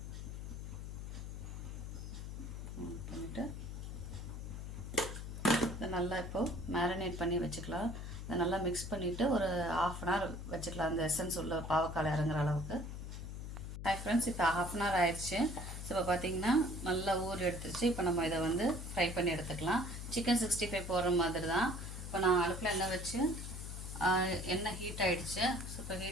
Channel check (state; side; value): noise; left; hum, 7 dB below the sound